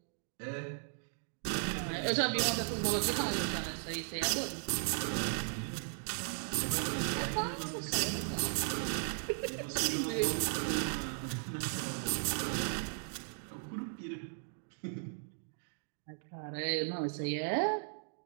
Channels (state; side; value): silent; left; digital silence